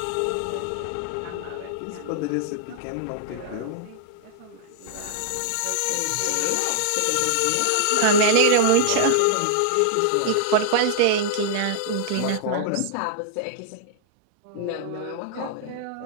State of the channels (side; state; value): both; different; correlation -0.01